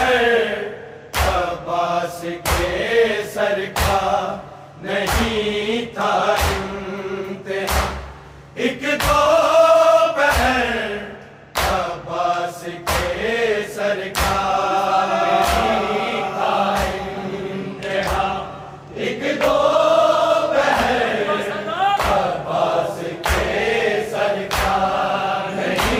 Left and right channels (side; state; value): both; identical; correlation 1.00